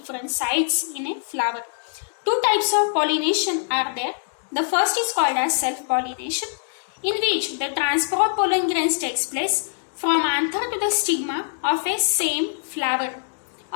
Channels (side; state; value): right; silent; digital silence